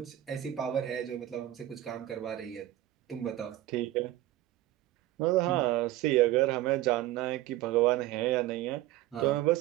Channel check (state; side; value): quieter; left; 15.1 dB